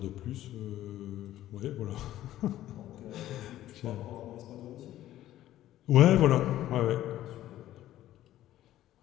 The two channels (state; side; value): quieter; right; 13.6 dB